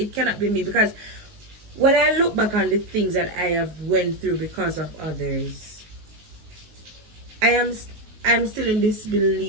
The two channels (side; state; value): left; late; 18 ms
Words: cannot be me, because when I look back on the things that I have went through because of others, I'm still in